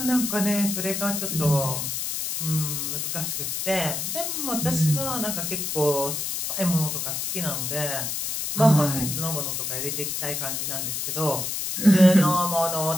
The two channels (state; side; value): noise; left; hiss, 2 dB below the sound